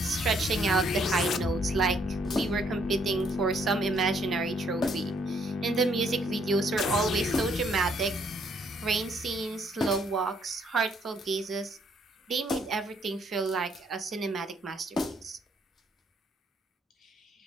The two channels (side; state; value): both; normal; correlation 0.68